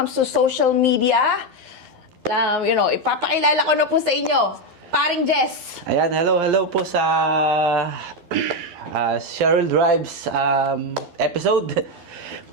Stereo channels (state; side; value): late; left; 12 ms